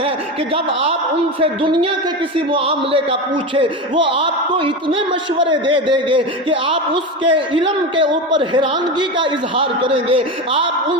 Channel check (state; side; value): normal; both; correlation 0.21